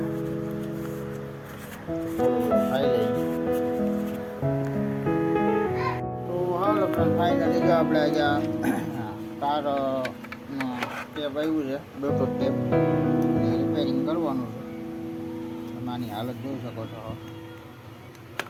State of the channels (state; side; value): identical; both; correlation 1.00